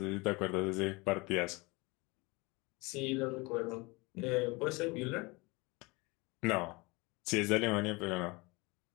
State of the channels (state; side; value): quieter; right; 25.5 dB